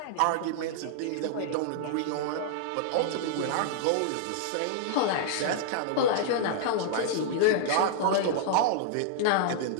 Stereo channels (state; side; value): different; both; correlation -0.01